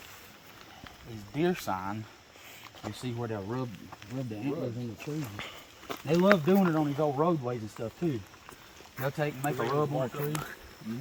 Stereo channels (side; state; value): both; identical; correlation 1.00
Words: is deer sign. You see where they'll rub the antlers in the trees. They love doing it on these old roadways and stuff too. They'll take and make a rub on a tree.